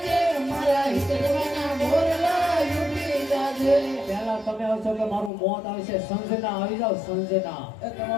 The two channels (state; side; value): drops out; right; at 5.3 s